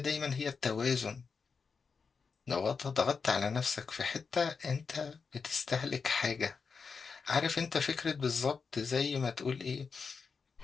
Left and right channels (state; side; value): quieter; right; 5.3 dB